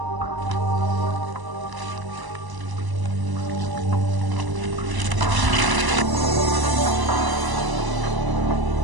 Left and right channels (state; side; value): late; left; 1.0 ms